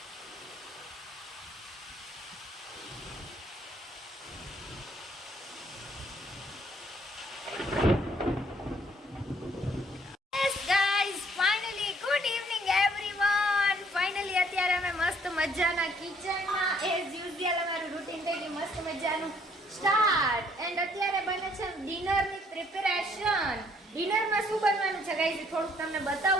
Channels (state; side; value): normal; both; correlation 0.64